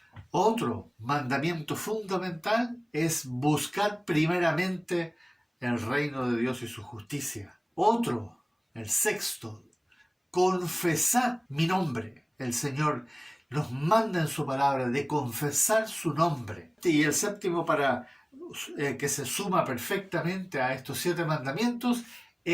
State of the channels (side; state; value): both; identical; correlation 1.00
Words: Otro mandamiento fundamental es buscar primeramente el reino de Dios y su justicia. Otro, el 6, confesad mi nombre. El Señor nos manda en su palabra de confesar su nombre. Y el 7, para que se suma perfectamente a estos 7 mandamientos,